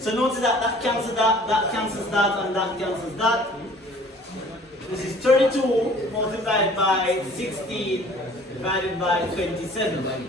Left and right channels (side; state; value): both; normal; correlation 0.51